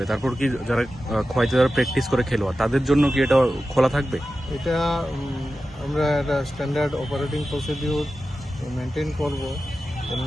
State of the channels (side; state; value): both; normal; correlation 0.93